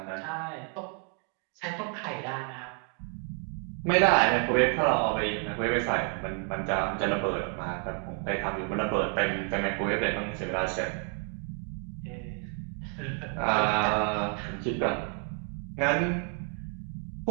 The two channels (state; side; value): quieter; left; 38.5 dB